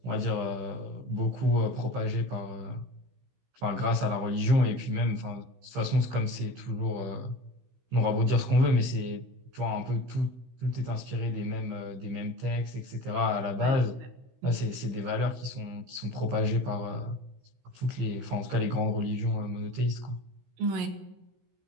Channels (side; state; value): left; late; 16 ms